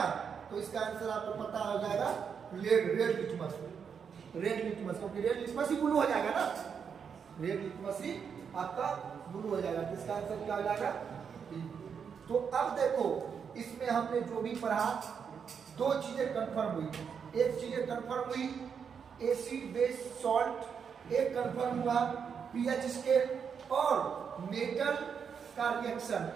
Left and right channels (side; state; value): left; quieter; 6.8 dB